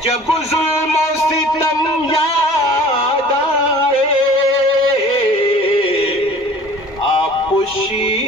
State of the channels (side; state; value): both; normal; correlation 0.47